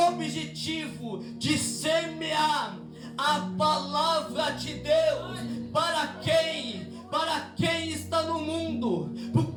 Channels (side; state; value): both; identical; correlation 1.00